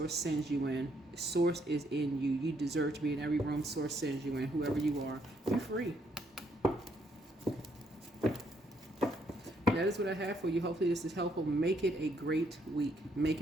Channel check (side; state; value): both; normal; correlation 0.72